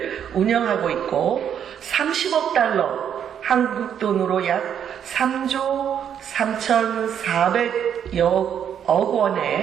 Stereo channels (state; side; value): quieter; left; 8.8 dB